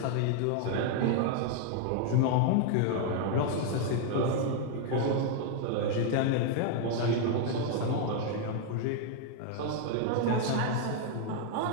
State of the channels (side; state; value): both; different; correlation 0.00